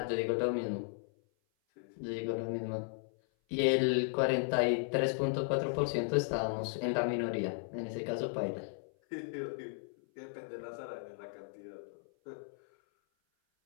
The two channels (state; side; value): silent; right; 54 dB below the other